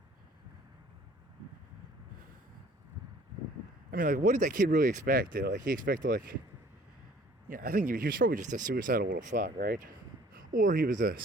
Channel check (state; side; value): normal; both; correlation 0.55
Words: I mean, like, what did that kid really expect? Like, he expected, I think he was probably just a suicidal little fuck, right? Or he was a